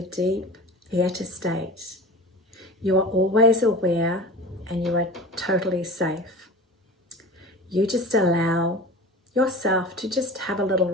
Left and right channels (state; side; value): normal; both; correlation 0.36